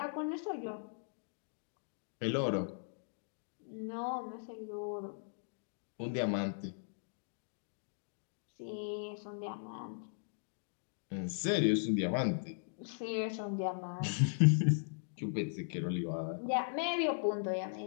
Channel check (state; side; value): silent; right; digital silence